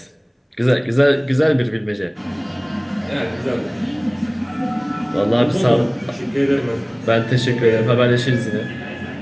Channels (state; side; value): identical; both; correlation 1.00